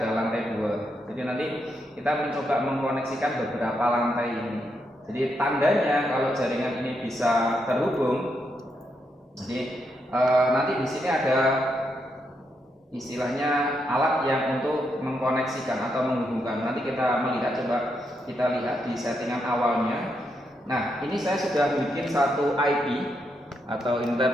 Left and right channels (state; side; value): normal; both; correlation 0.81